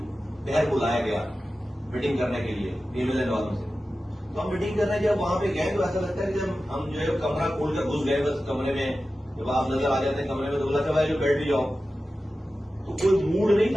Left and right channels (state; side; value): normal; both; correlation 0.94